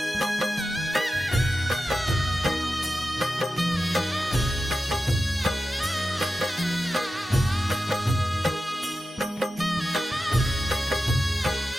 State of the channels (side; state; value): both; normal; correlation 0.92